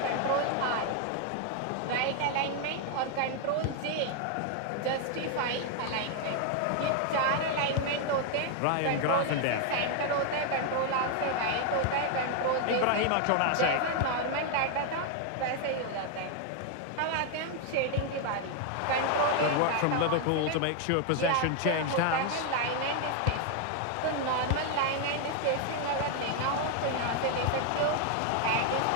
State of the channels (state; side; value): different; both; correlation 0.00